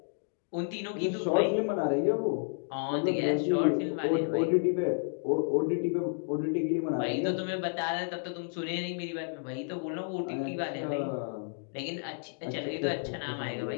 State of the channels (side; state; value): right; silent; digital silence